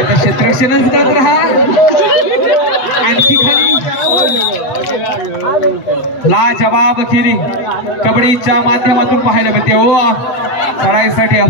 क्षेत्ररक्षणच करत राहा आणखी खाली लाजवाब केली कबड्डीच्या माध्यमातून पाहायला मिळते हो चढाईसाठी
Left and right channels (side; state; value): right; late; 8.2 ms